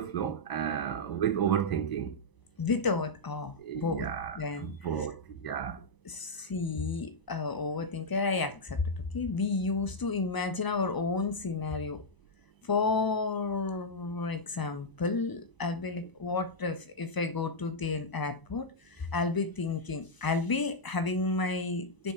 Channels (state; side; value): late; right; 1.0 ms